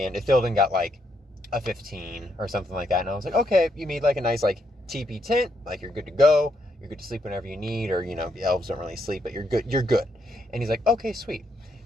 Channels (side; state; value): both; normal; correlation 0.77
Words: Ithilden got like a 15 or something like that. And I was like, okay, you made like a nice like teepee tent, like you're good to go, you're good to sleep whenever you need, or the elves don't really sleep, but you're good. And he's like, okay, sweet.